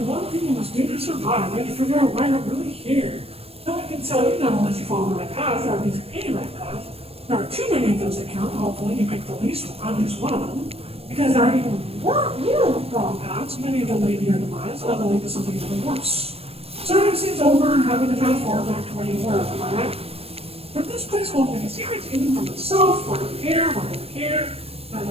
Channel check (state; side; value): late; left; 0.28 ms